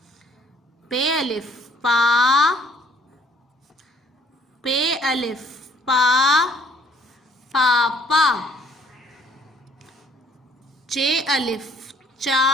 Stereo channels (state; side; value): normal; both; correlation 0.61